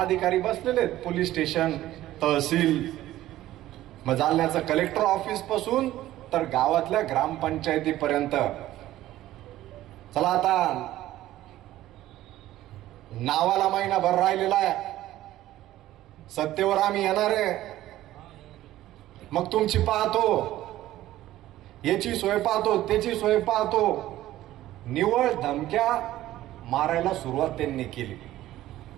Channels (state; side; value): quieter; left; 14.6 dB